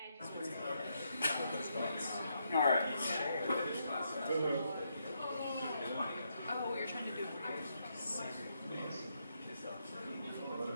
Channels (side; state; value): both; inverted; correlation -0.79